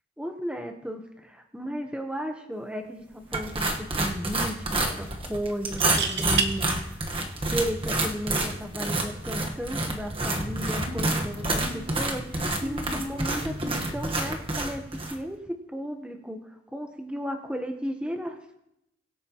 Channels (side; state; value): both; normal; correlation 0.46